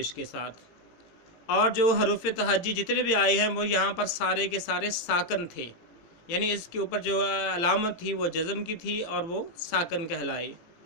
کے ساتھ۔ اور جو حروف تہجی جتنے بھی آئے ہیں وہ یہاں پر سارے کے سارے ساکن تھے، یعنی اس کے اوپر جو علامت تھی وہ جزم کی تھی اور وہ ساکن کہلائی۔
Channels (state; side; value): late; right; 18 ms